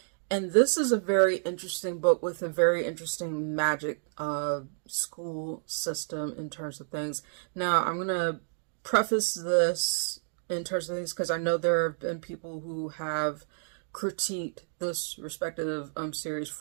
And this is a very interesting book with a very interesting magic school system in terms of things. Now, I'm going to preface this in terms of things because I know there have been people who have critiqued this respective series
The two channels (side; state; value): left; silent; digital silence